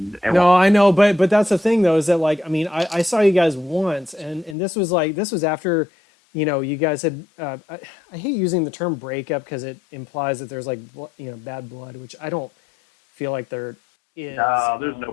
no, I know, but that's the thing though, is that like, I mean, I saw you guys once, and this was after, you guys had, I hate using the term breakup because it implies that there's like, bad blood, which I don't feel like there is. No, there's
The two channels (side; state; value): right; drops out; at 4.5 s